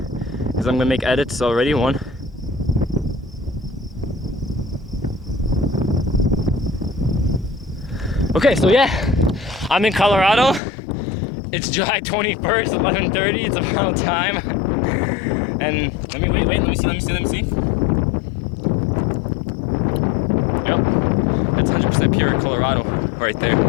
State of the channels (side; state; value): right; drops out; at 10.6 s